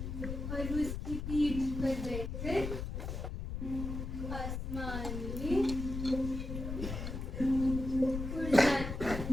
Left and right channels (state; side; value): noise; left; rumble, 5 dB below the sound